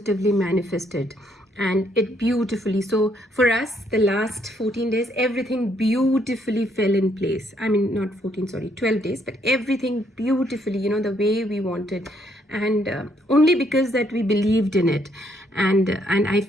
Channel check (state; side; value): normal; both; correlation 0.71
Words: manifest it, and it beautifully. So for us, the last 14 days, everything beautifully fell in place. I mean, not 14, sorry, 12 days, but everything beautifully, the way we wanted. And only because that we believed in it. And I